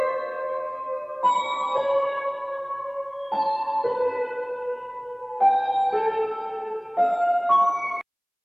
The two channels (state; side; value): identical; both; correlation 1.00